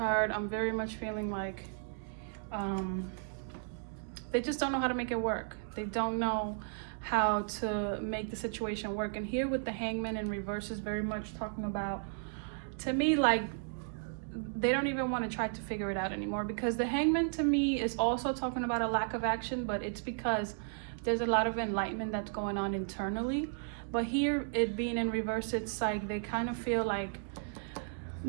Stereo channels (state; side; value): silent; left; digital silence